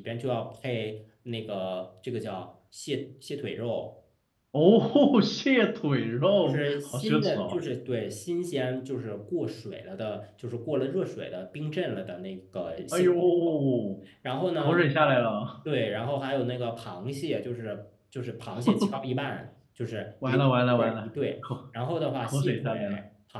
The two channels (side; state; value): both; identical; correlation 1.00